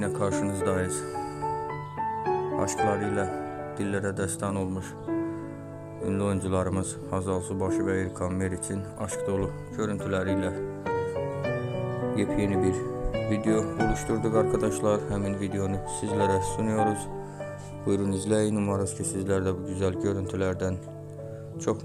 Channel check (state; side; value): identical; both; correlation 1.00